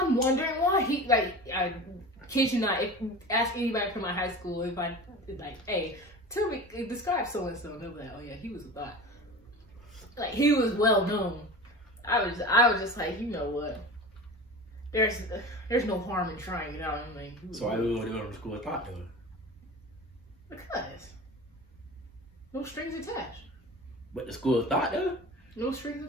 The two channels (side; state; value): both; normal; correlation 0.34